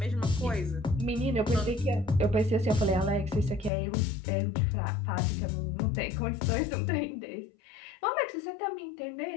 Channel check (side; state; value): right; drops out; at 3.7 s